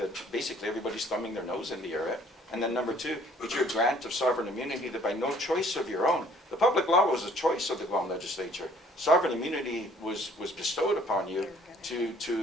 basically everybody's thumbing their nose in the air at. And then number two, it's your grant of sovereign immunity that by no choice of your own. The public law was a choice of the Guam legislature. Sovereign immunity was bestowed upon you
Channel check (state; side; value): normal; both; correlation 0.58